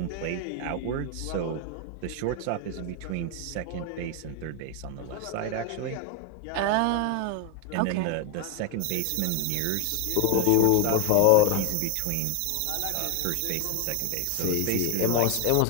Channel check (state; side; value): different; both; correlation 0.01